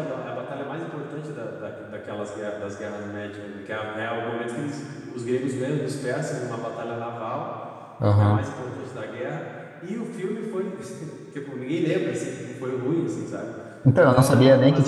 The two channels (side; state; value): both; identical; correlation 1.00